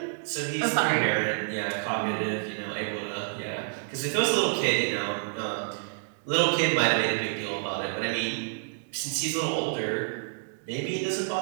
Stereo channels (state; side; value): silent; left; digital silence